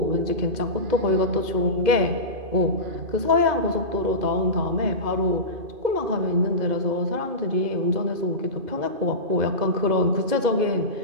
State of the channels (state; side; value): late; left; 2.5 ms